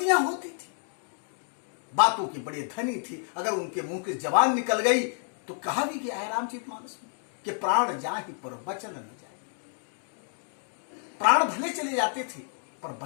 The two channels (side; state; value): right; silent; 58 dB below the other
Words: होती थी, बातों के बड़े धनी थे। अगर उनके मुंह की जबान निकल गई तो कहा भी गया है रामचरितमानस में कि प्राण जाहि पर वचन न जाए। प्राण भले चले जाते थे पर